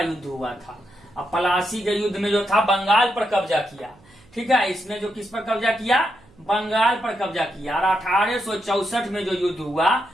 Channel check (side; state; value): right; noise; hum, 29 dB below the sound